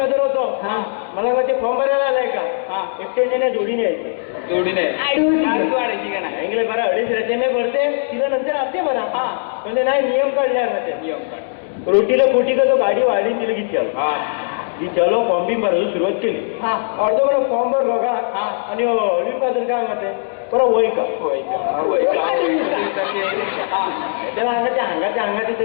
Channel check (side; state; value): right; silent; 67 dB below the other